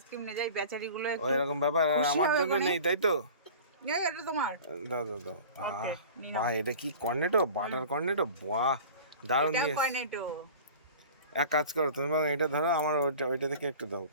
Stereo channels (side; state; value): both; inverted; correlation -0.40